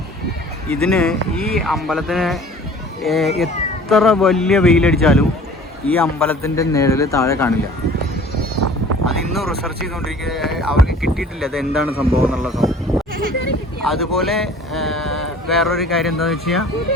ഇതിന് ഈ അമ്പലത്തിന് എത്ര വലിയ വെയിലടിച്ചാലും ഈ അമ്പലത്തിൻ്റെ നിഴൽ താഴെ കാണില്ല. അതിന്നും റിസർച്ച് ചെയ്തുകൊണ്ടിരിക്കുക, അവർക്ക് കിട്ടിയിട്ടില്ല അത് എന്താണ് സംഭവം എന്നുള്ള സംഭവം. അതുപോലെ വേറൊരു കാര്യം എന്താണെന്ന് വെച്ച് കഴിഞ്ഞാൽ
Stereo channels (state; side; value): normal; both; correlation 0.47